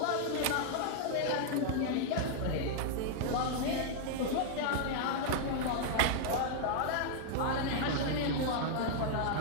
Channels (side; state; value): both; different; correlation -0.01